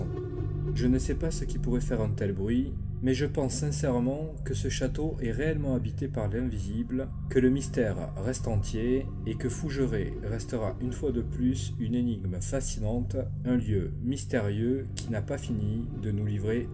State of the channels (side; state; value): both; identical; correlation 1.00